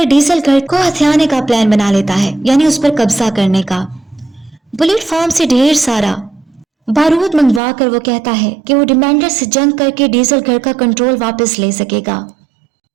ڈیزل گھر کو ہتھیانے کا پلان بنا لیتا ہے، یعنی اس پر قبضہ کرنے کا۔ بلٹ فارم سے ڈھیر سارا بارود منگوا کر وہ کہتا ہے کہ وہ ڈیمانڈر سے جنگ کر کے ڈیزل گھر کا کنٹرول واپس لے سکے گا۔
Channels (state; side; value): drops out; left; at 7.6 s